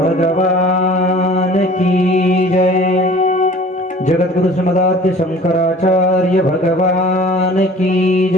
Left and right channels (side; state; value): both; normal; correlation 0.47